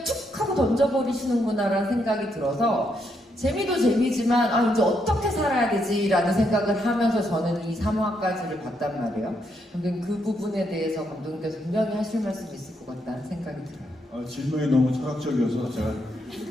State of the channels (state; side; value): normal; both; correlation 0.77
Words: 툭 하고 던져버리시는구나라는 생각이 들어서 재미도 재미지만 아 이제 어떻게 살아야 되지라는 생각을 하면서 저는 이 3화까지를 봤단 말이에요. 근데 그 부분에 대해서 감독님께서 분명히 하실 말씀이 있을 것 같다는 생각이 들어요. 질문이 너무 철학적이어서 제가